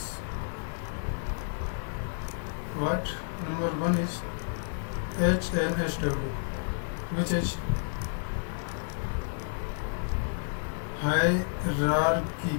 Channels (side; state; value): right; silent; digital silence